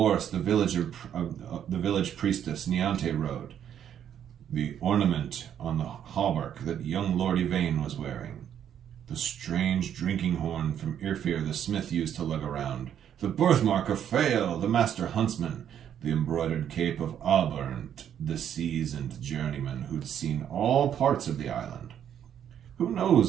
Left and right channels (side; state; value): left; quieter; 9.5 dB